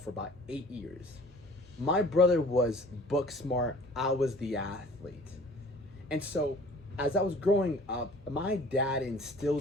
about 8 years. My brother was book smart, I was the athlete. And so as I was growing up, my dad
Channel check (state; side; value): normal; both; correlation 0.48